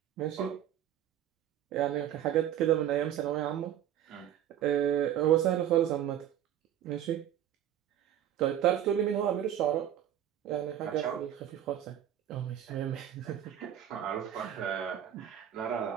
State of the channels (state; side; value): quieter; left; 10.7 dB